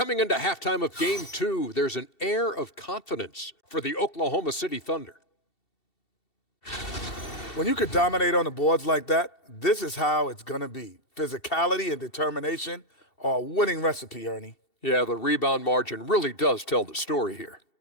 into halftime of Game 2, there's an air of confidence for the Oklahoma City Thunder. When you could dominate on the boards like that, this is how it's going to be. Physicality and determination are a winning recipe, Ernie. Yeah, the rebound margin really does tell the story here.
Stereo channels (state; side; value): late; right; 2.7 ms